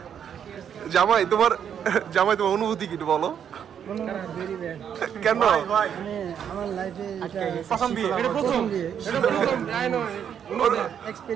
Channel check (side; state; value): left; quieter; 8.5 dB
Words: জামাই তোমার অনুভূতি কি বলো? কেন? আমার লাইফে প্রথম বিয়ে